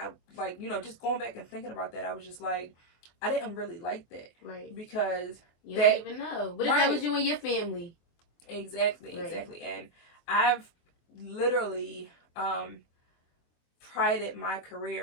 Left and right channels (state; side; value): late; right; 24 ms